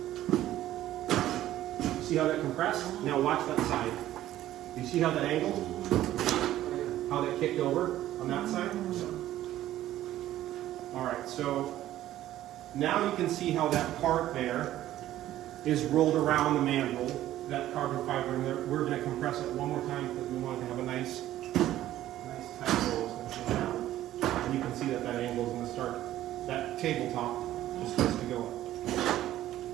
See how that compressed? Now watch that side. Do you see how that angled? How that kicked over on that side? All right, so now you can see how that part there is rolled around the mandrel, that carbon fiber, and we're going to compress it one more time because we want it to have a nice tight roll. It's going to go down. And you can see that angle is going to start, that tabletop is supposed to go up.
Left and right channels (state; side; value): quieter; left; 13.6 dB